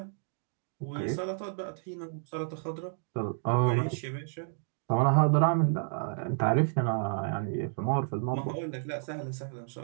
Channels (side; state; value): left; silent; digital silence